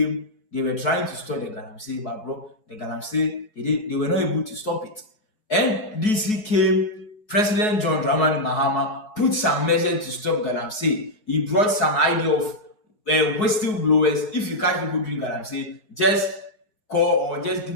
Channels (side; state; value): right; late; 4.8 ms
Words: they were trying to stop the Galamsey, but bro, the Galamsey, they were not able to stop it. NDC came, President John Dramani Mahama put some measures to stop Galamsey. He brought some idea of whistleblowers. If you catch people doing Galamsey, just call or just